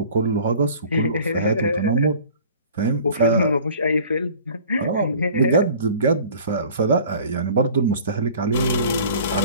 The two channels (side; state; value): both; inverted; correlation -0.47